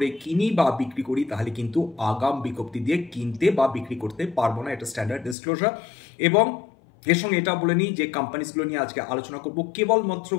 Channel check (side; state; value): right; drops out; at 5.4 s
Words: কিনি বা বিক্রি করি, তাহলে কিন্তু আগাম বিজ্ঞপ্তি দিয়ে কিনতে বা বিক্রি করতে পারবো না, এটা স্ট্যান্ডার্ড ডিসক্লোজার। এবং এর সঙ্গে এটা বলে নিই যে কোম্পানিজগুলো নিয়ে আজকে আলোচনা করব কেবলমাত্র